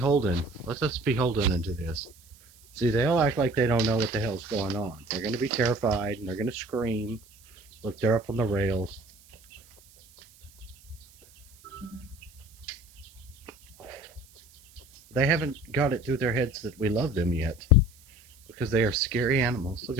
Let us beholden into this. See, they'll act like they don't know what the hell's going on. They're going to be terrified and they're going to scream. Look, they're up on the rails. They haven't got it through their heads that we love them yet. Because they are scary animals. Look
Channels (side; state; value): right; noise; hiss, 26 dB below the sound